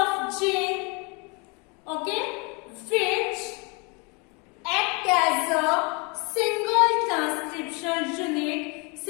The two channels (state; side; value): quieter; right; 31.0 dB